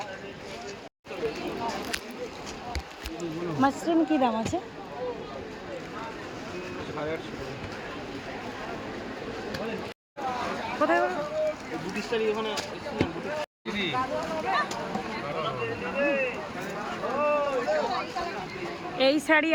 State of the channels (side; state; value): both; identical; correlation 1.00